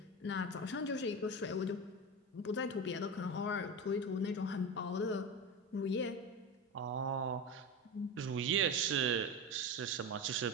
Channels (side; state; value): both; normal; correlation 0.22